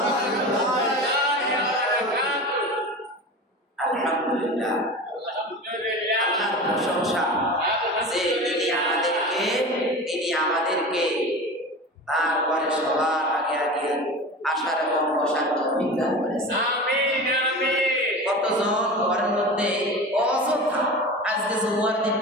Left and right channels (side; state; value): both; normal; correlation 0.32